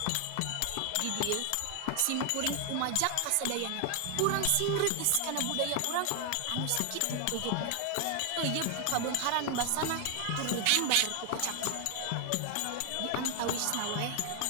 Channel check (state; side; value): different; both; correlation 0.00